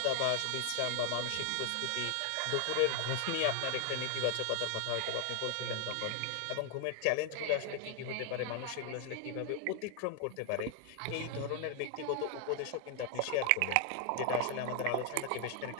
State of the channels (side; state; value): both; different; correlation 0.00